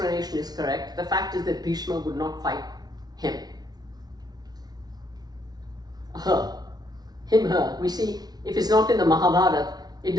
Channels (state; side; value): late; left; 0.19 ms